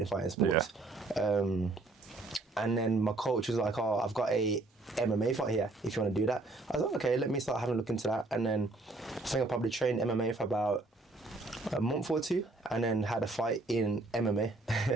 sports. Yeah. And then my coach was like, oh, I've got a MMA fight here, if you want to do that. I was like, okay, let me start having a look into that. And then I think I probably trained MMA for about a month or two, and then had a fight in MMA.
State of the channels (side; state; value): left; quieter; 3.1 dB